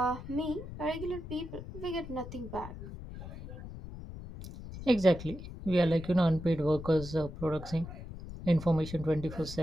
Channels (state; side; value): noise; left; rumble, 11 dB below the sound